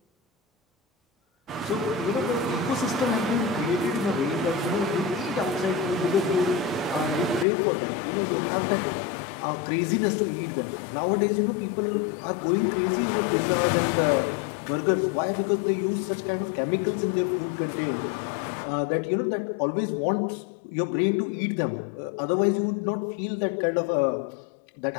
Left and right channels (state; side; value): drops out; right; at 7.5 s